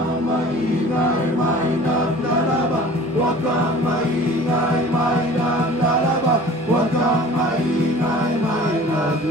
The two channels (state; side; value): normal; both; correlation 0.45